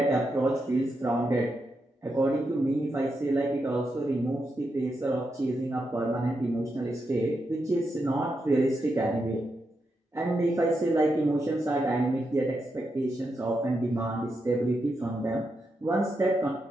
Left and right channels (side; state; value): both; normal; correlation 0.85